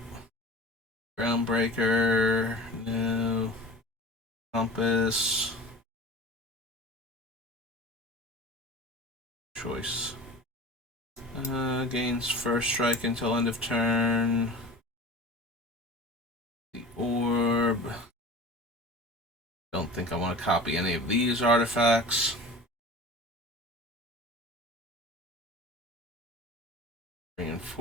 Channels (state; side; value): normal; both; correlation 0.37